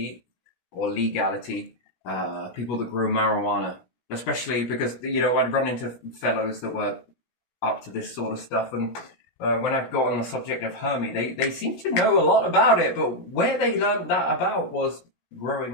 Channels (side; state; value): right; late; 16 ms